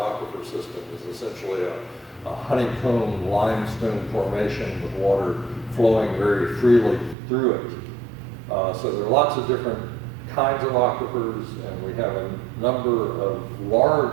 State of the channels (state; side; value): drops out; left; at 7.2 s